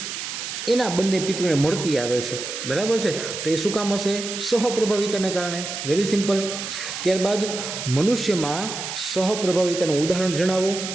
એના બંને પિતૃને મળતી આવે છે, બરાબર છે। તો એ શું કામ હશે? સહપ્રભાવિતાને કારણે, વેરી સિમ્પલ। ત્યારબાદ મનુષ્યમાં સહપ્રભાવિતાનું ઉદાહરણ જણાવો,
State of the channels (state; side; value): noise; right; hiss, 6 dB below the sound